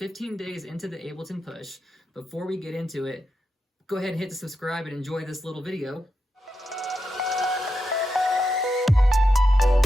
days into the Ableton Push. Before we get into it, go ahead and hit the subscribe and enjoy this little video.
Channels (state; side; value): normal; both; correlation 0.87